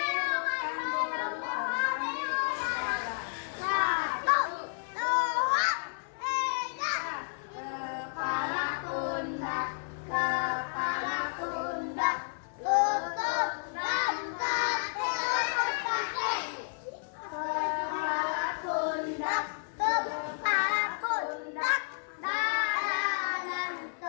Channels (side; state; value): right; silent; 57 dB below the other